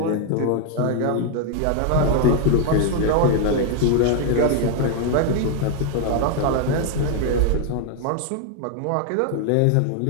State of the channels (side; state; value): both; different; correlation 0.00